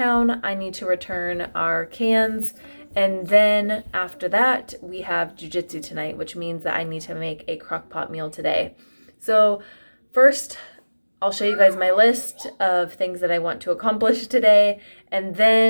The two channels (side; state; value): both; inverted; correlation -1.00